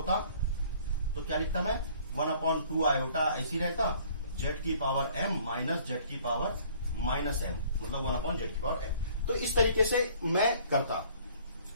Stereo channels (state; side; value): inverted; both; correlation -0.56